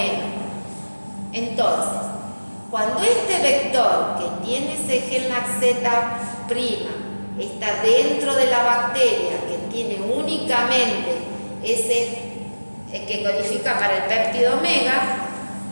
Entonces, cuando este vector que tiene ese gen laxeta prima está dentro de la bacteria, que tiene únicamente ese que codifica para el péptido omega,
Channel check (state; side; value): inverted; both; correlation -1.00